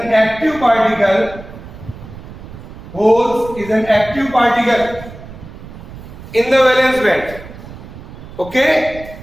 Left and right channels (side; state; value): right; noise; rumble, 15 dB below the sound